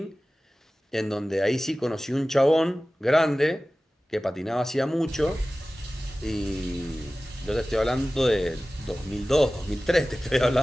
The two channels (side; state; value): both; normal; correlation 0.97